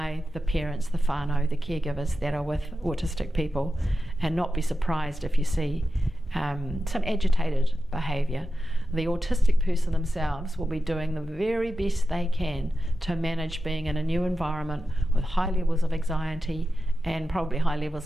the parents, the whānau, the caregivers that are with autistic people, and not be surprised if you see some agitated behaviour. The autistic person themselves will be doing the very best they can to manage being in a new environment with high levels of anxiety and probably high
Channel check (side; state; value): both; normal; correlation 0.92